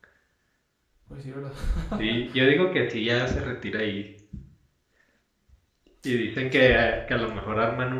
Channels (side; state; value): both; identical; correlation 1.00